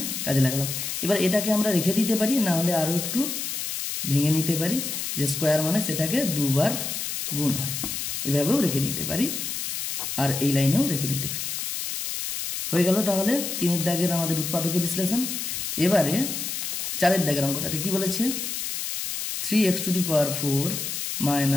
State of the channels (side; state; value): left; noise; hiss, 4 dB below the sound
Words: কাজে লাগালাম। এবার এটাকে আমরা রেখে দিতে পারি, না হলে আরো একটু ভেঙে নিতে পারি, যে স্কয়ার মানে সেটাকে দুবার গুণ হয়, এভাবেও রেখে দিতে পারি আর এই লাইনেও রেখে দিতে পারি। হয়ে গেল তাহলে 3 দাগের আমাদের উৎপাদকে বিশ্লেষণ। এবারে 4 দাগের অঙ্কটাতে কি বলেছে, 3x⁴